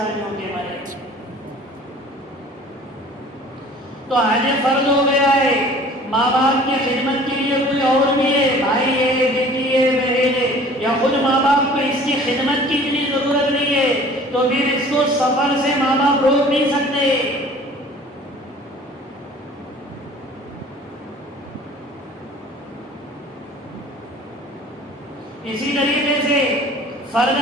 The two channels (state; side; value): normal; both; correlation 0.48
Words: کے مرے۔ تو حج فرض ہو گیا ہے، ماں باپ کی خدمت کے لیے کوئی اور بھی ہے، بھائی ہے، بیٹی ہے، بہن ہے، یا خود ماں باپ کو اس کی خدمت کی اتنی ضرورت نہیں ہے تو پھر اس کو سفر سے ماں باپ روک نہیں سکتے۔ اسی طریقے سے فرض